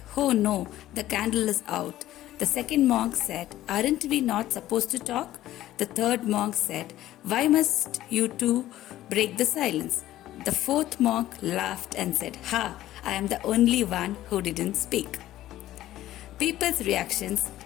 "Oh no, the candle is out." The second monk said, "Aren't we not supposed to talk?" The third monk said, "Why must you two break the silence?" The fourth monk laughed and said, "Ha, I am the only one who didn't speak." People's reactions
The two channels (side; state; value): right; quieter; 14.3 dB